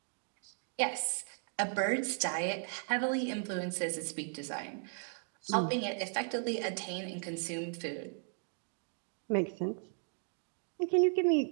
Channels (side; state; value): left; silent; 54 dB below the other